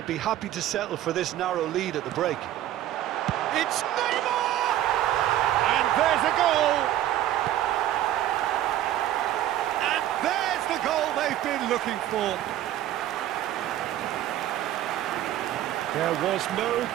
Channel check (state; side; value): quieter; left; 12.9 dB